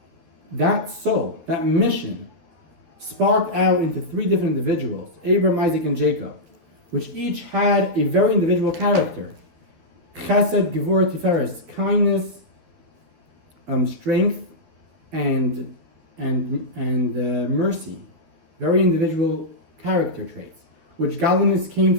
that soul, that mission, sparked out into 3 different individuals, Abraham, Isaac, and Jacob, which each had a very individual character. Chesed, Gevurah, Tiferes, kindness, strength, and mercy, very individual character traits, which godliness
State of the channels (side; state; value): left; late; 13 ms